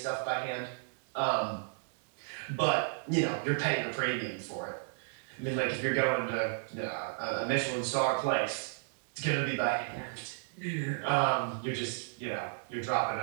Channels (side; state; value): left; silent; digital silence